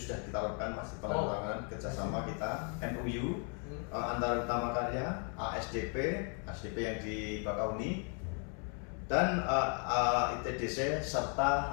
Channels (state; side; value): quieter; right; 39.7 dB